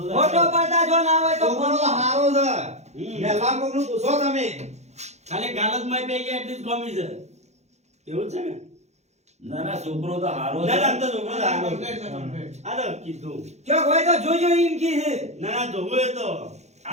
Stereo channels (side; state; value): left; late; 0.32 ms